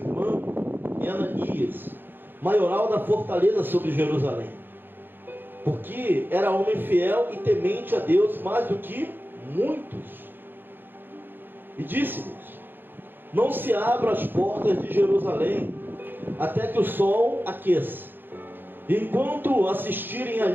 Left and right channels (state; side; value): late; left; 0.097 ms